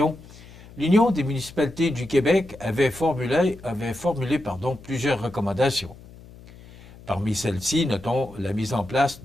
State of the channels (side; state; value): left; noise; hum, 20 dB below the sound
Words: l'Union des municipalités du Québec avait formulé plusieurs recommandations. Parmi celles-ci, notons la mise en place